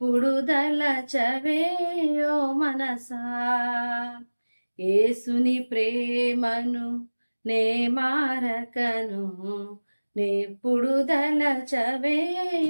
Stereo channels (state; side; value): inverted; both; correlation -1.00